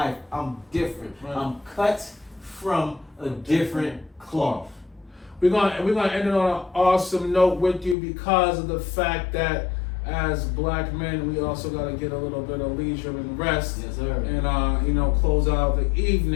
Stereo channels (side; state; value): right; drops out; at 8.0 s